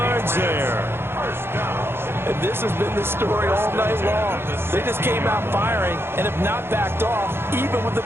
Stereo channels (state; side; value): late; left; 0.11 ms